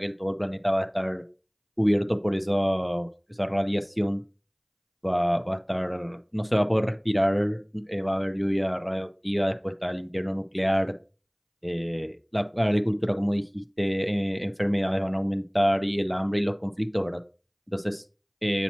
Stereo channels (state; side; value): identical; both; correlation 1.00